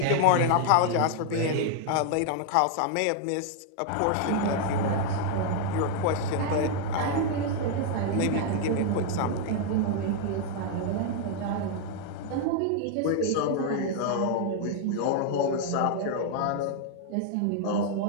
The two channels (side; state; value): both; different; correlation 0.00